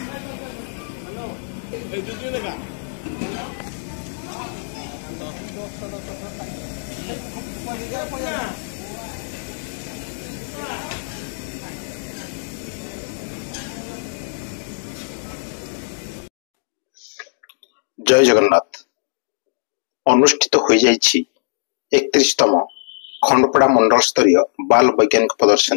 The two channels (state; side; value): silent; right; digital silence